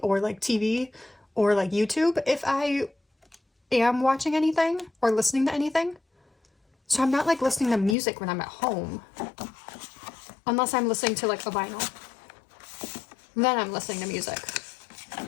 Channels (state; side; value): drops out; right; at 8.0 s